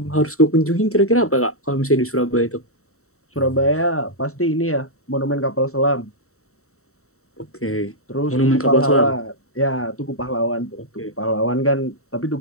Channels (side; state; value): right; late; 0.64 ms